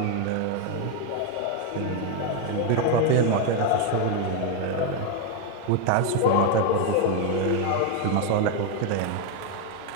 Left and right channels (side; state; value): both; different; correlation 0.01